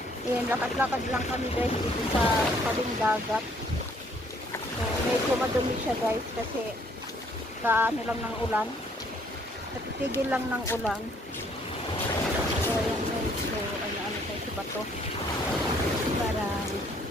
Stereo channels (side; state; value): both; normal; correlation 0.64